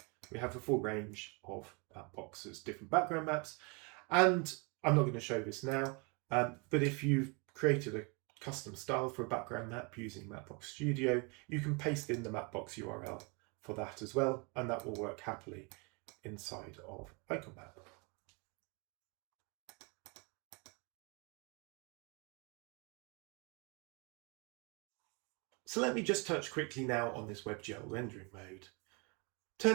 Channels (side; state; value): left; quieter; 31.5 dB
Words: we have a full range of Mapbox's different background maps, and I'm not going to show this now, but if you've created a custom style for a background map using Mapbox Studio, you can paste in the Mapbox URL for that as well, and that will work happily inside of IconMap. So let me just touch quickly now on this WebGL rendering mode.